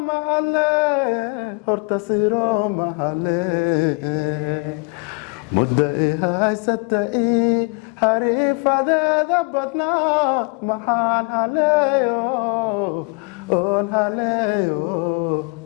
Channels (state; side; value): quieter; right; 32.7 dB